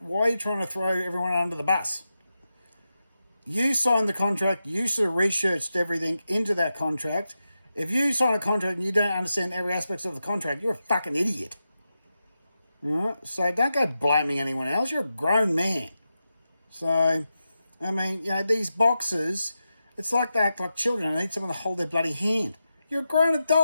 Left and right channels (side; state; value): both; inverted; correlation -0.90